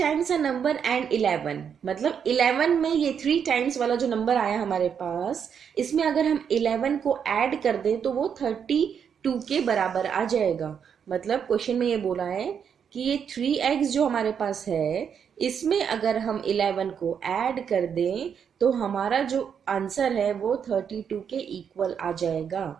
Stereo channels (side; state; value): left; quieter; 7.5 dB